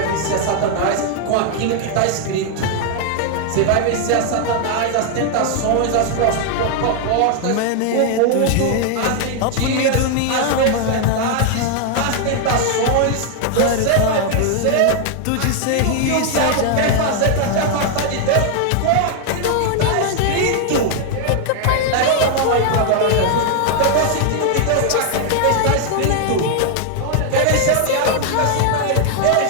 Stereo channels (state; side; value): different; both; correlation 0.00